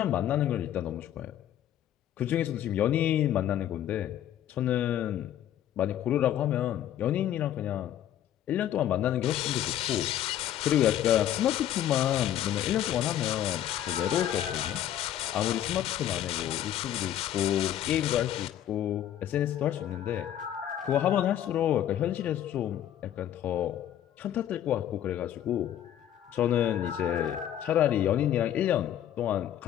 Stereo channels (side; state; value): right; quieter; 11.3 dB